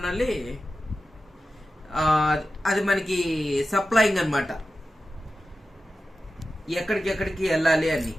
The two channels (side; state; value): both; normal; correlation 0.93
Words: అది మనకి సప్లయింగ్ అనమాట, ఎక్కడికి వెళ్ళాలి అని.